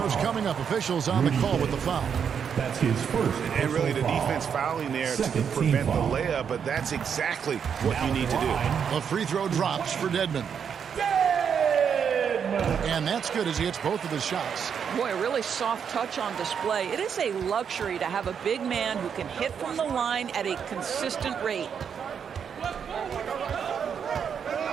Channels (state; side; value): quieter; left; 7.4 dB